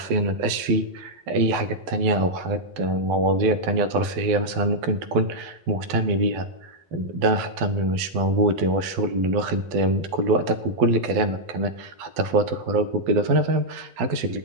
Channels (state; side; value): late; left; 12 ms